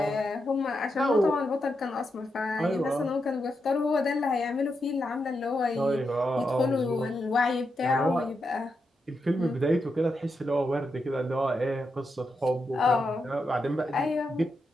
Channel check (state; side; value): normal; both; correlation 0.85